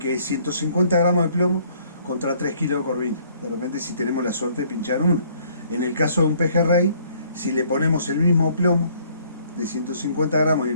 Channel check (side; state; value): both; inverted; correlation -0.62